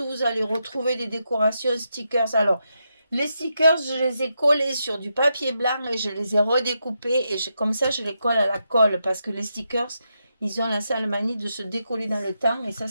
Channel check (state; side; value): inverted; both; correlation -0.84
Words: vous allez retrouver des décorations stickers. Alors, les stickers, je les ai collés sur du papier blanc et je les ai redécoupés. Et comme ça, je les colle à la colle parce que les stickers, ils ont la sale manie de se décoller dans le temps et